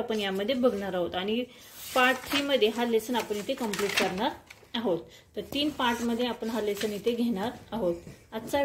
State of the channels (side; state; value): both; identical; correlation 1.00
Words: यामध्ये बघणार आहोत आणि पार्ट 3 मध्ये हा लेसन आपण इथे कंप्लीट करणार आहोत. तर 3 पार्ट मध्ये आपण हा लेसन इथे घेणार आहोत. आजचा